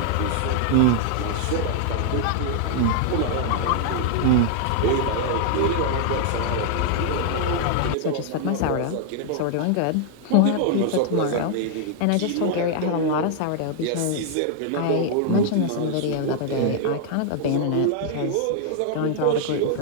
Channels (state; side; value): different; both; correlation 0.00